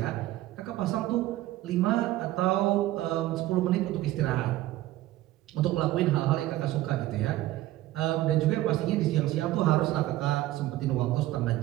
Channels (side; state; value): left; quieter; 15.5 dB